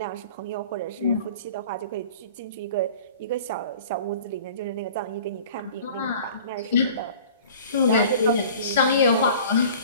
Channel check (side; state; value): both; inverted; correlation -0.45